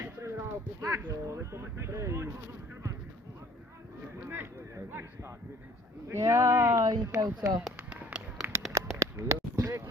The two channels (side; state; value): both; normal; correlation 0.54